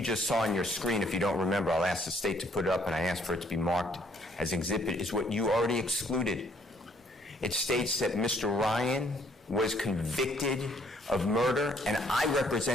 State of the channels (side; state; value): both; normal; correlation 0.65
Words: just saw on your screen, if you don't remember, I'll ask the state to put it up and I asked for it to be marked as exhibit, is what you already excluded. It states that Mr. Ryan was convicted of murder and I